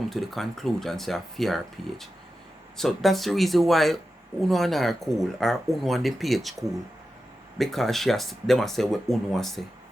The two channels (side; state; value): both; normal; correlation 0.91